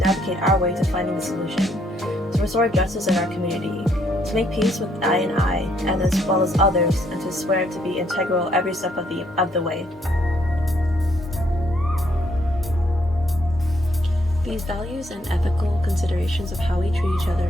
our way to finding the solution, to restore justice in our community, to make peace with I and I, and as well as others, and to swear to be integral every step of the way. These values and ethical considerations of how we treat each other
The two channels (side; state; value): both; normal; correlation 0.70